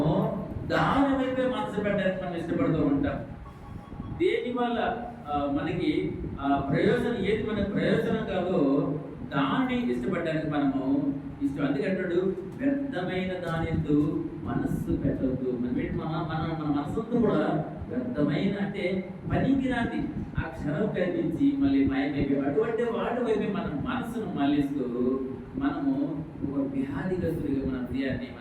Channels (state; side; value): identical; both; correlation 1.00